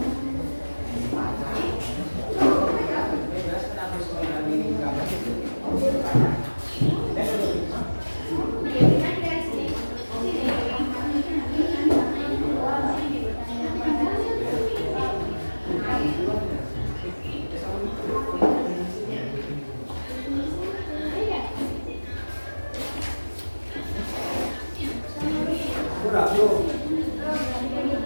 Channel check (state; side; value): inverted; both; correlation -1.00